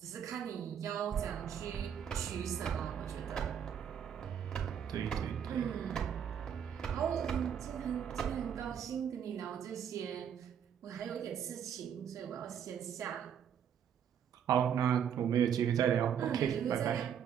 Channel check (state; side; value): quieter; left; 8.5 dB